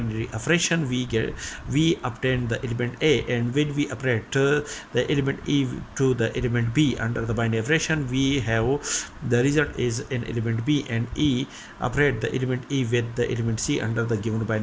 operation. We obtain the element A, and when we operate the element E to the element B under the binary operation, we have the result is an element B, and E operate the element E with the element C under the given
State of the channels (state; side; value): identical; both; correlation 1.00